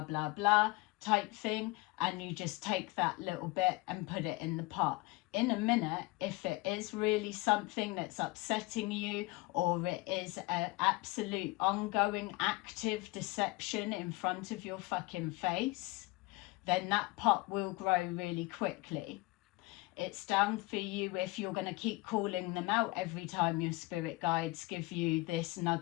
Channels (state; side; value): quieter; right; 22.2 dB